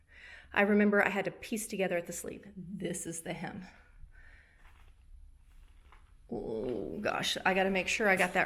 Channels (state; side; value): identical; both; correlation 1.00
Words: I remember I had to piece together at the sleeve. This is the hem. Oh gosh, I gotta make sure I got